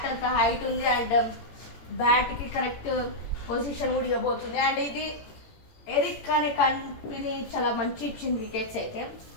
అంత హైట్ ఉంది అండ్ బ్యాట్ కి కరెక్ట్ పొజిషన్ కూడా ఇవ్వబోతుంది. అండ్ ఇది ఎరిక్ అనే కంపెనీ చాలా మంచి ఇచ్చింది వికెట్స్ అయితే.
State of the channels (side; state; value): right; late; 17 ms